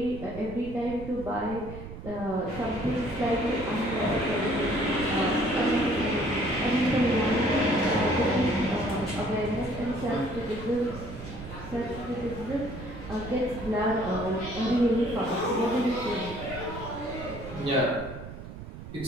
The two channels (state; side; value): noise; right; rumble, 12 dB below the sound